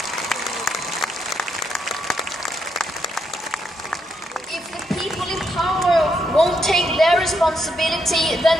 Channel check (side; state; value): both; normal; correlation 0.79